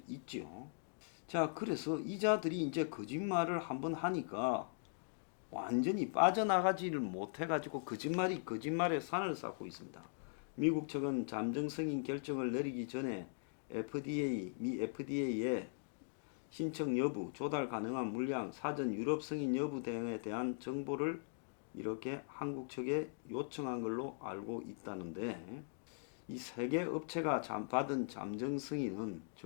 있지요. 자, 그래서 이자들이 이제 거짓말을 한번 하니까 완전히 빠져나가지를 못해가지고 거짓말에 산을 쌓고 있습니다. 미국 측은 잠정 승인 결정을 내리기 전에 미 FDA에 신청 여부, 조달 가능한 물량, 사전 유럽 승인 여부 등에 대한 정보를 이렇게 한국 측에 요청한 걸로 알고 있다는데, 이 세 개 업체가 받은 잠정 승인은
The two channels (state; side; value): silent; right; digital silence